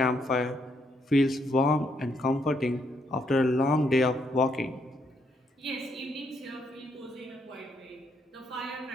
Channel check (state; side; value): normal; both; correlation 0.74